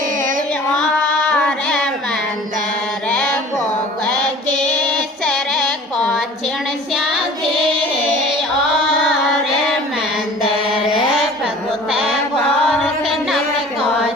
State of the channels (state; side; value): normal; both; correlation 0.45